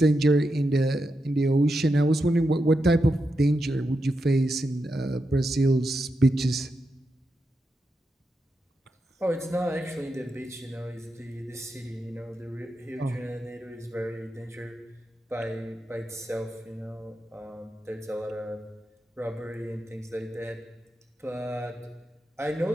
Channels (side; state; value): both; normal; correlation 0.87